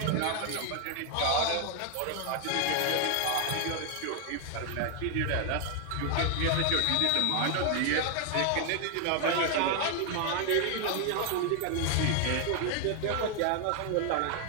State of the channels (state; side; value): different; both; correlation 0.00